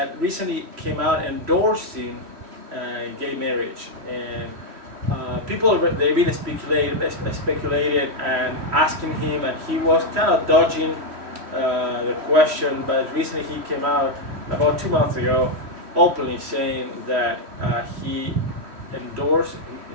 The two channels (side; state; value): left; late; 3.1 ms